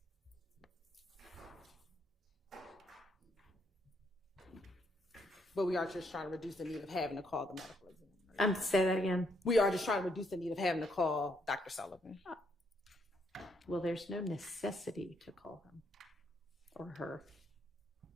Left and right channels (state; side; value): normal; both; correlation 0.74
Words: But we are just trying to reduce the need of having to call the medical examiner. Say that again. We are just trying to reduce the need of having to call Dr. Sullivan. Well, there's no necessity to call him or her.